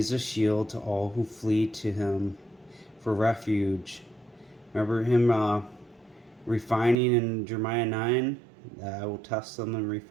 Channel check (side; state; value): left; drops out; at 7.0 s